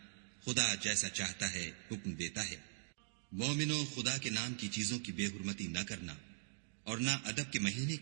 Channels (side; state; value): left; silent; digital silence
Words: خدا جیسا چاہتا ہے حکم دیتا ہے۔ مومنو، خدا کے نام کی چیزوں کی بے حرمتی نہ کرنا، اور نہ ادب کے مہینے